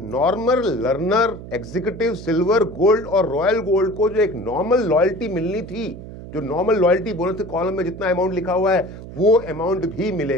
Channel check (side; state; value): right; noise; hum, 13 dB below the sound